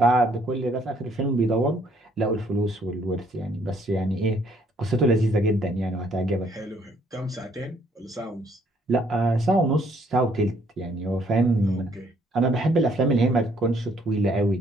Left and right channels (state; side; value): normal; both; correlation 0.66